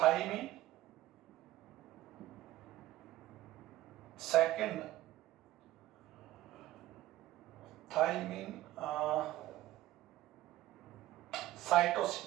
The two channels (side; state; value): left; quieter; 15.4 dB